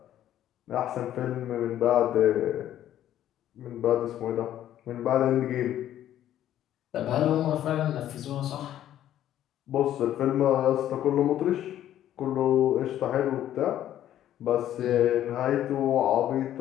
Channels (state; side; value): quieter; right; 11.8 dB